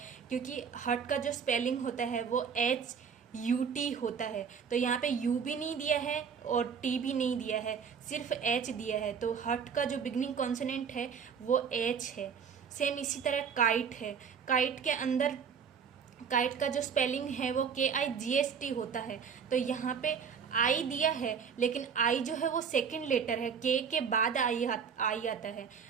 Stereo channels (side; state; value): left; quieter; 6.7 dB